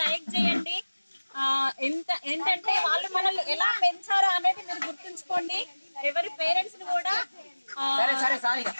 లైక్ చేయండి. ఏంటంటే వాళ్ళు మనల్ని ఎలా పెంచారో అనేది మీరు గుర్తుంచుకోండి. ఎవరి పేరెంట్స్ ని కూడా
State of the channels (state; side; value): inverted; both; correlation -1.00